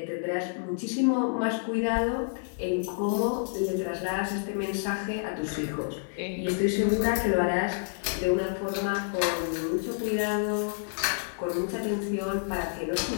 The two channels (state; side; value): silent; right; digital silence